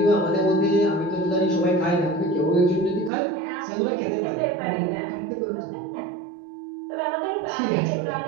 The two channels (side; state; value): left; drops out; at 3.1 s